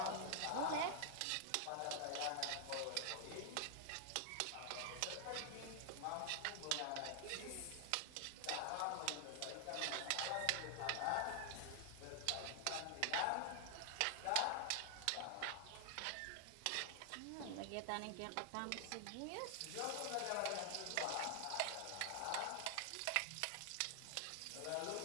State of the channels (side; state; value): both; different; correlation 0.00